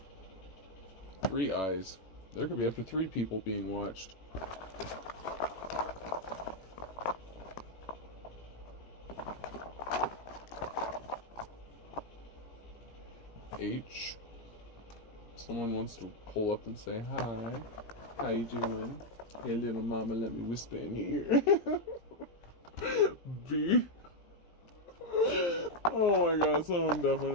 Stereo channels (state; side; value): late; right; 17 ms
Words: Three eyes. There could be up to 3 people being watched. H. Someone wants to pull up and say hi. How you doing? Hey little mama, let me whisper in your ear. B. Oh my god, someone